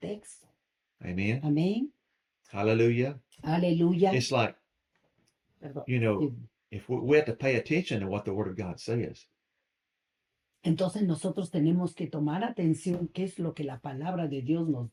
Amen. Amén. Hallelujah. Aleluya. It's like, Perdón. you know, if we have to pay attention to what the Word of God says. Entonces nosotros tenemos que tomar atención qué es lo que la palabra de Dios nos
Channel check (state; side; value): identical; both; correlation 1.00